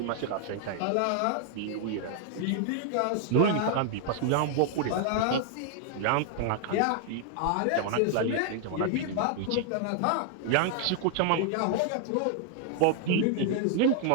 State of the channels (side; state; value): both; different; correlation 0.00